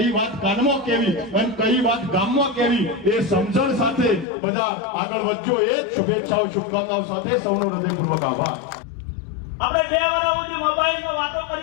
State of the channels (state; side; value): drops out; right; at 4.2 s